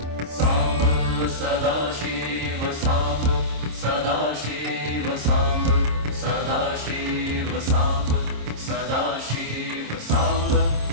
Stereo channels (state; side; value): late; left; 26 ms